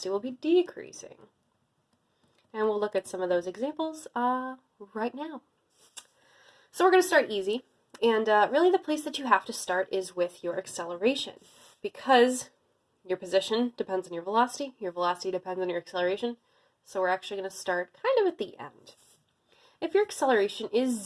will be decreasing. And we'll look at some of those examples right now. So we're going to start easy, and really the place that you have to start is with your acceleration, because your position depends on your velocity depends on your acceleration, so we're actually going to start kind of at the end. If your acceleration is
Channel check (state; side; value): identical; both; correlation 1.00